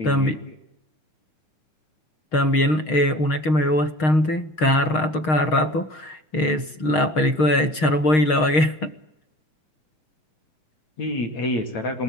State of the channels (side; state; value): right; late; 6.4 ms